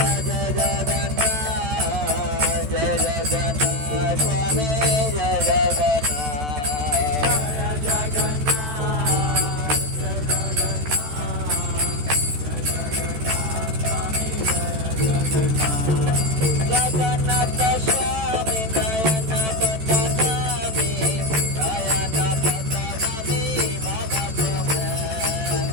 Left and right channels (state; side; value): late; left; 14 ms